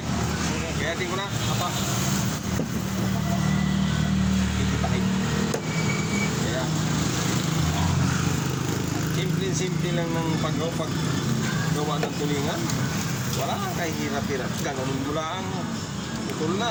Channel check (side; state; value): both; identical; correlation 1.00